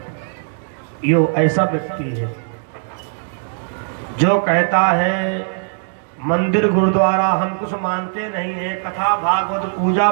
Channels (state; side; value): silent; left; digital silence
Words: यो ऐसा व्यक्ति है जो कहता है मंदिर गुरुद्वारा हम कुछ मानते नहीं है, कथा भागवत पूजा